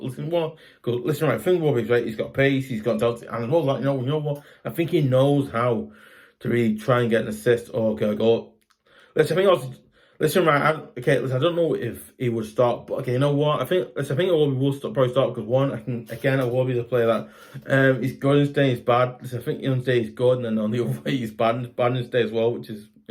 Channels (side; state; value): both; identical; correlation 1.00